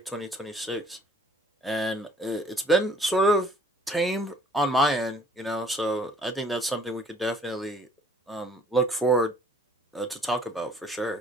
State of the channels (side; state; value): both; normal; correlation 0.57